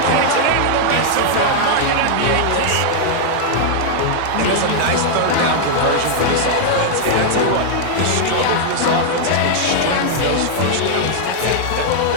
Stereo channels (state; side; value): different; both; correlation -0.01